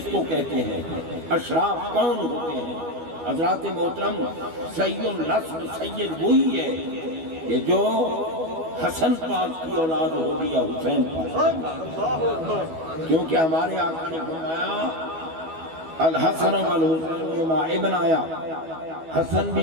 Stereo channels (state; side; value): late; left; 12 ms